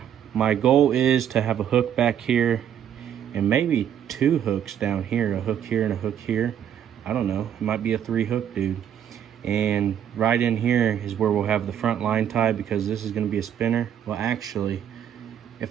My goal is to have a hook back here and maybe 2 hooks down here, a hook here and a hook here. I don't know, it might be a 3 hook dude. And right in here is where we'll have the front line tie, because this is going to be a spinner. Well, actually,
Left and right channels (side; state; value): left; quieter; 9.5 dB